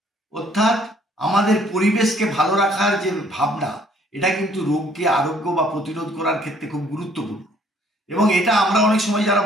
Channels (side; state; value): both; normal; correlation 0.61